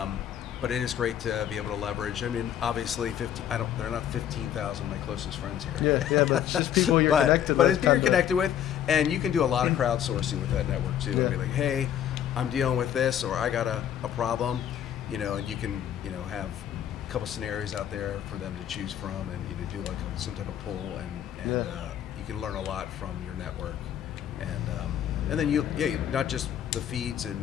But it is great to be able to leverage. I mean, obviously, they're not 15,000 of my closest friends here. Yeah, but it's just people you're connected with. But it's people you're connected with, and you can do a lot of crowdsourcing with that network too. And be like, hey, I'm dealing with this, or I got a problem, and you can, have a couple scenarios out there for them to choose from, and do some type of poll, and you can learn a lot from your network, and then not just the feeds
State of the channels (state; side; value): quieter; right; 10.1 dB